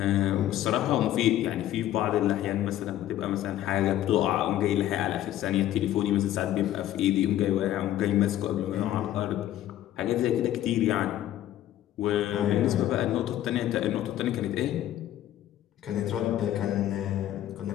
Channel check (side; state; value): right; quieter; 12.8 dB